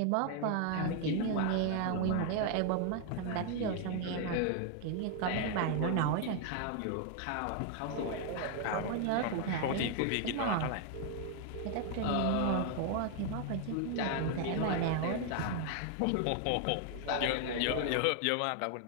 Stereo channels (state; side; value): different; both; correlation 0.00